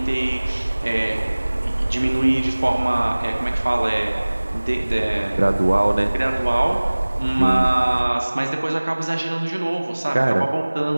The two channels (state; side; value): inverted; both; correlation -1.00